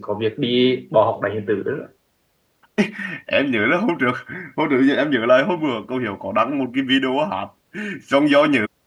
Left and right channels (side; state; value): both; identical; correlation 1.00